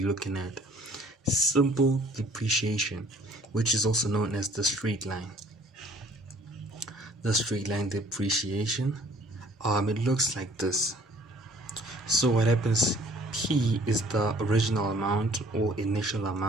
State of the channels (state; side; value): normal; both; correlation 0.56